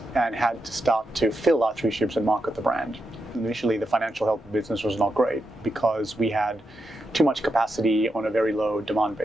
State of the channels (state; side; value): normal; both; correlation 0.85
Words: and had to start to fill our 3 ships and market the brand. Initially, the financial health of the business was not great because we had too much capacity on a very low demand